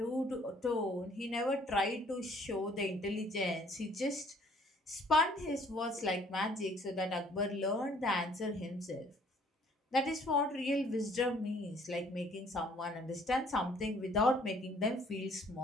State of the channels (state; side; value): normal; both; correlation 0.59